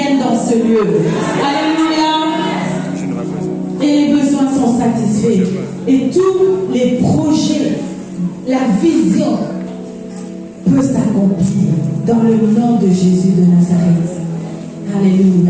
dans ce lieu. Alléluia. la vision peut s'accomplir dans le nom de Jésus de Nazareth.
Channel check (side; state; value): both; identical; correlation 1.00